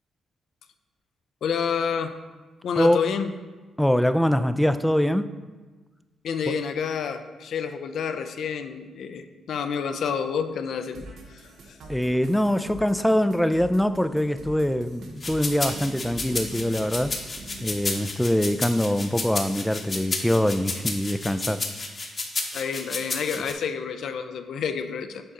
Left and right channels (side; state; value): both; normal; correlation 0.92